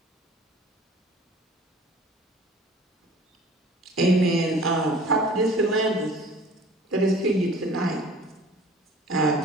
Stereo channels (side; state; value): both; normal; correlation 0.47